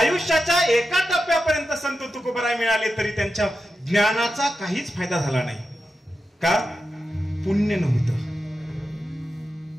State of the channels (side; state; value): both; normal; correlation 0.90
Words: एका टप्प्यापर्यंत संत तुकोबराय मिळाले तरी त्यांच्या ज्ञानाचा काहीच फायदा झाला नाही. का? पुण्य नव्हतं.